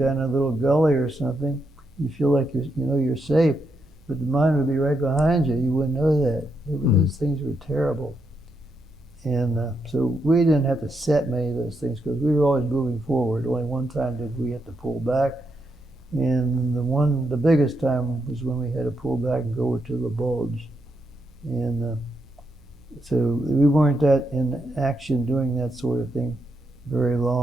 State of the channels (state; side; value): noise; right; hum, 28 dB below the sound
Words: a little gully or something. You feel like you're safe, but the mine would be right behind you. You wouldn't know that. Those things were terrible. And so we didn't have to set many of those things because we were always moving forward. Only one time did we have to pull back. And the biggest time was when we had to pull back and go over to the bulge. And so we weren't that in action doing that sort of thing very